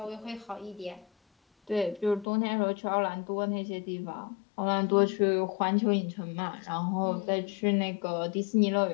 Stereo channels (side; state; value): right; drops out; at 2.2 s